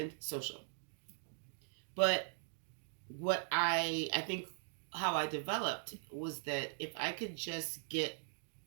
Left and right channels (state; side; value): silent; left; digital silence